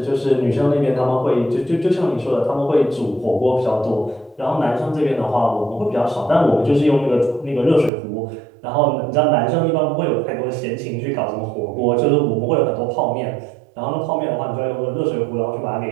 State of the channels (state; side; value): drops out; left; at 7.9 s